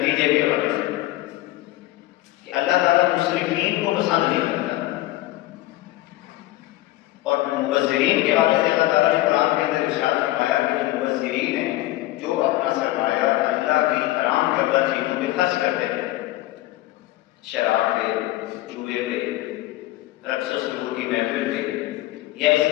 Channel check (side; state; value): right; quieter; 17.0 dB